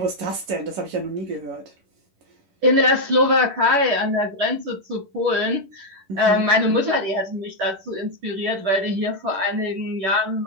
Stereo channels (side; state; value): left; late; 10 ms